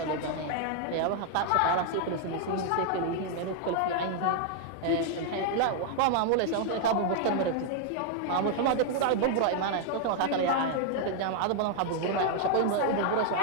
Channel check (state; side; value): different; both; correlation -0.01